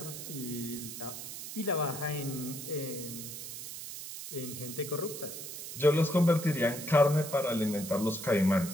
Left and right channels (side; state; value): right; noise; hiss, 9 dB below the sound